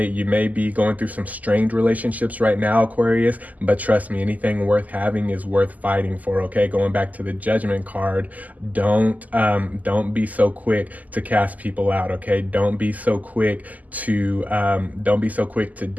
may be going through some strained relationships right now, Aquarius, but trust me, anything worth having is worth fighting for, okay? Going back to the Judgment card, don't be so quick to cast people out, okay? Don't be so quick to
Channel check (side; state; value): left; late; 0.078 ms